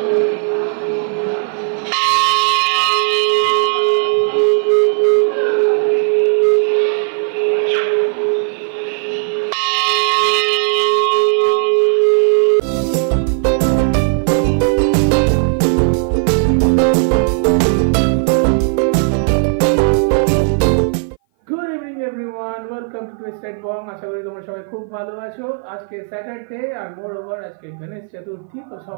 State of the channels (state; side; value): silent; left; 58 dB below the other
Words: ওয়েলকাম টু টুইস্টেড বং। আশা করি তোমরা সবাই খুব ভালো আছো। আজকে স্যাটারডে আর মোর ওভার আজকে গণেশ চতুর্থী, তো